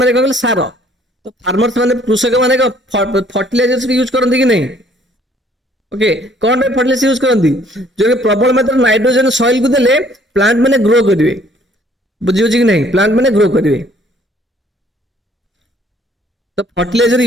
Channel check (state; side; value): normal; both; correlation 0.60